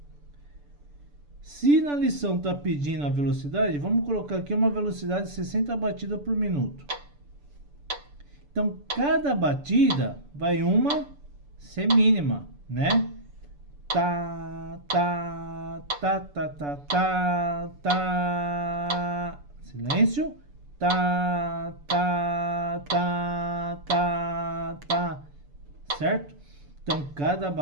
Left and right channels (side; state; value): left; late; 6.9 ms